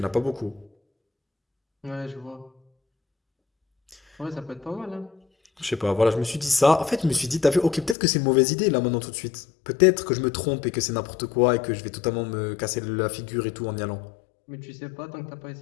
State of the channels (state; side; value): drops out; right; at 8.0 s